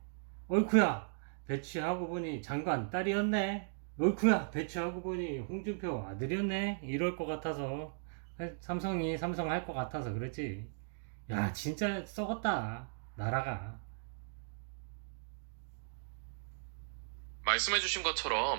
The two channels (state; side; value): silent; left; digital silence